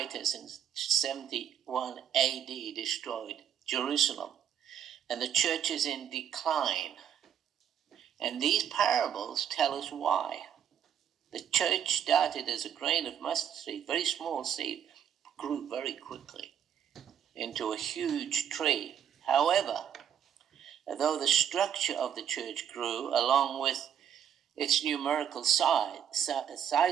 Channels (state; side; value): quieter; left; 9.1 dB